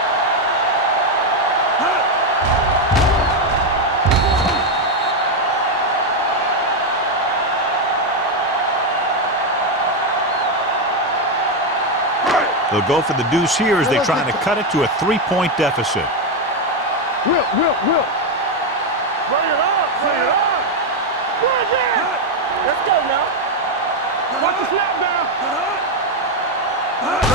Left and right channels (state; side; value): normal; both; correlation 0.06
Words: They'll go for the deuce here as they try to cut it to a 3-point deficit. Whip. Bring it up. Bring it. Let's go now. Watch the snap down.